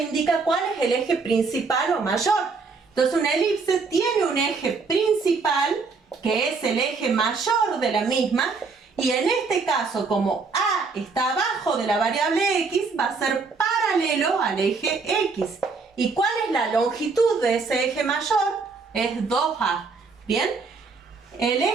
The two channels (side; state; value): left; quieter; 4.5 dB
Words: indica cuál es el eje principal o mayor. Entonces una elipse tiene un eje principal, que es el eje mayor de la misma, y en este caso, como A está abajo de la variable X, va a ser paralelo al eje X. ¿Y cuál es la longitud de ese eje mayor? Es 2A. ¿Bien? El